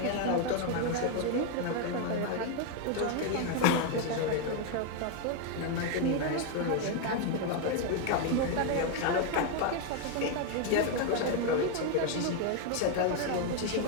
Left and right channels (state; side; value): different; both; correlation 0.01